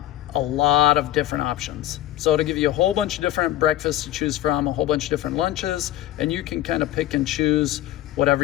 lot of different options. So it'll give you a whole bunch of different breakfasts to choose from, a whole bunch of different lunches, and you can kind of pick and choose whatever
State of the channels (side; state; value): right; quieter; 13.9 dB